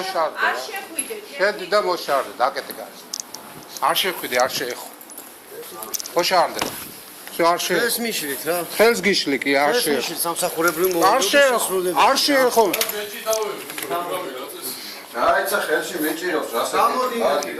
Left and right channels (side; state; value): both; identical; correlation 1.00